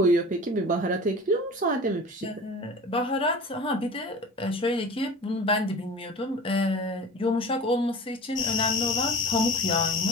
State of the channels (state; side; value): normal; both; correlation 0.38